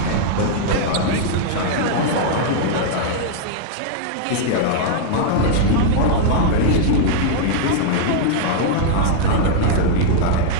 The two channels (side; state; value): both; different; correlation -0.01